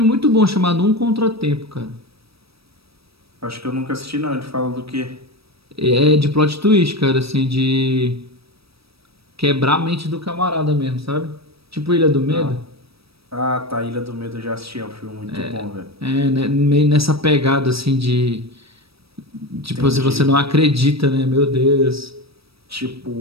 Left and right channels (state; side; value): late; left; 0.77 ms